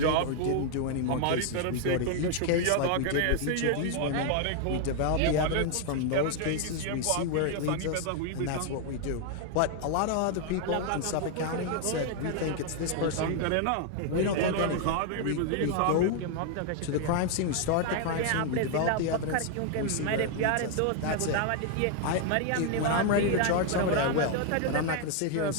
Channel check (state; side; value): different; both; correlation 0.00